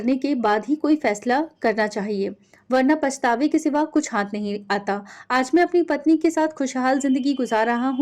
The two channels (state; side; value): identical; both; correlation 1.00